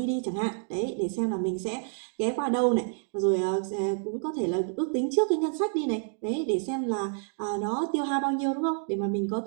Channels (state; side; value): silent; left; 55 dB below the other